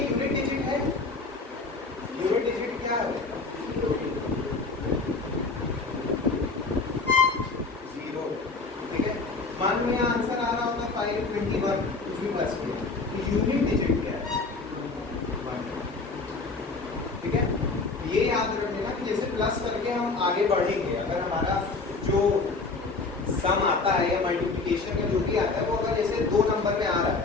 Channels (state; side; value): quieter; right; 3.9 dB